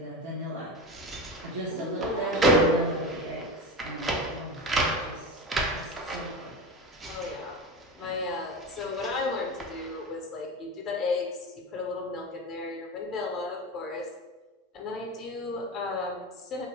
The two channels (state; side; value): normal; both; correlation 0.24